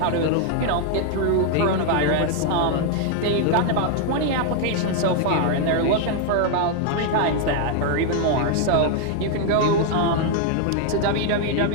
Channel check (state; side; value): different; both; correlation 0.00